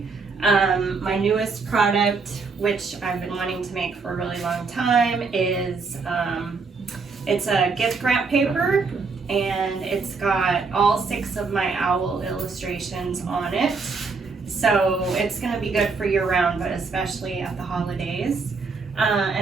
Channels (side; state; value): left; quieter; 4.5 dB